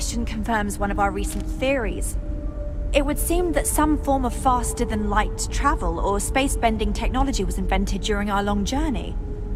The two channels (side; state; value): both; identical; correlation 1.00